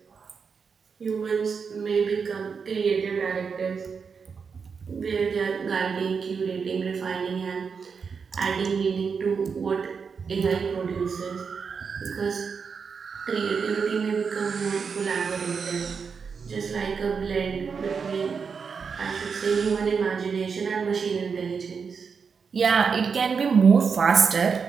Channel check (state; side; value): quieter; left; 5.8 dB